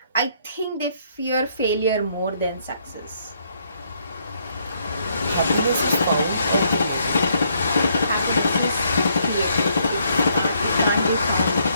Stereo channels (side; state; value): both; inverted; correlation -0.71